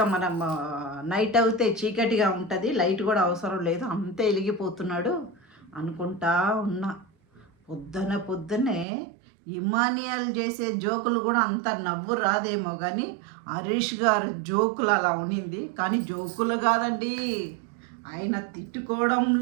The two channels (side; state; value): left; drops out; at 8.8 s